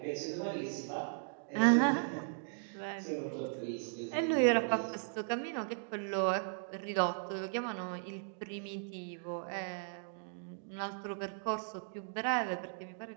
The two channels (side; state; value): left; silent; digital silence